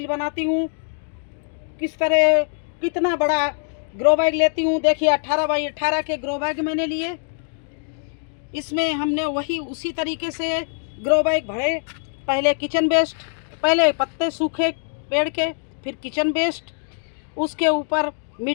बनाती हूँ, किस तरह कितना बड़ा ग्रो बैग लेती हूँ। देखिए 18 बाई 18 के ग्रो बैग मैंने लिए। इसमें हमने वही उसी तरीके से ग्रो बैग भरे। पहले किचन वेस्ट, पहले पत्ते सूखे पेड़ के, फिर किचन वेस्ट, उसके ऊपर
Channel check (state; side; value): silent; right; digital silence